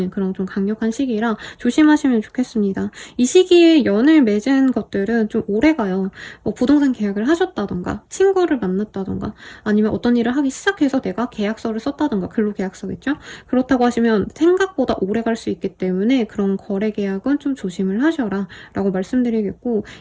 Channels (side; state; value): both; identical; correlation 1.00